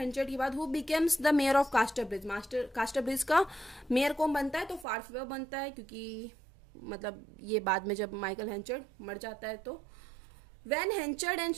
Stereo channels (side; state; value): left; drops out; at 4.9 s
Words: के बाद who becomes the mayor of कास्टरब्रिज, कास्टरब्रिज का मेयर कौन बनता है? तो फारफेयर बनता है, क्योंकि मतलब ये बाद में जब माइकल हेंचर्ड मर जाता है। तो When Henchard and